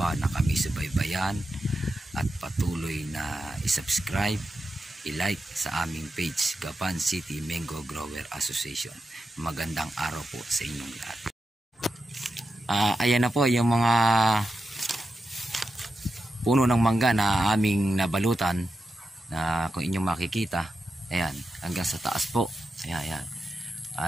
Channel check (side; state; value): both; normal; correlation 0.89